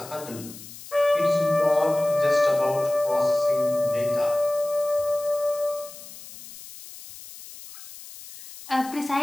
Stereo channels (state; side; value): noise; left; hiss, 16 dB below the sound